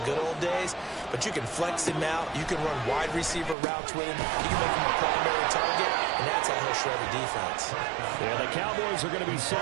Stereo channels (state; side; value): drops out; left; at 3.6 s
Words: good old days, but you can flex him out. You can run wide receiver routes with him. You can make him a primary target, and that's how he'll shred a defense. Yeah, the Cowboys are going to be